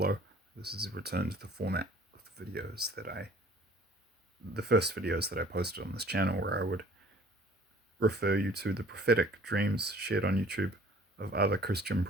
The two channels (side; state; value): both; normal; correlation 0.53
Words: This is a return to the format of the videos the first videos that I posted on this channel, where I would refer you to the prophetic dreams shared on YouTube of other Christian